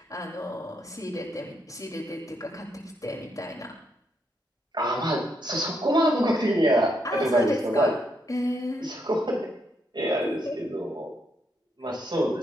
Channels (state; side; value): normal; both; correlation 0.77